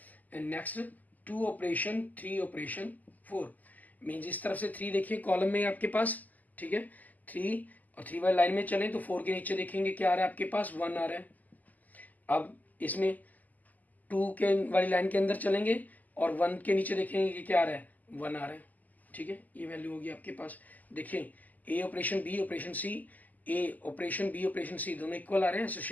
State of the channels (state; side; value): late; right; 0.081 ms